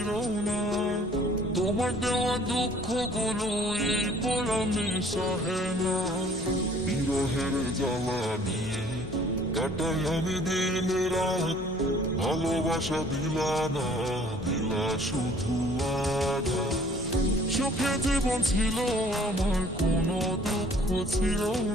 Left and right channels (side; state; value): both; normal; correlation 0.55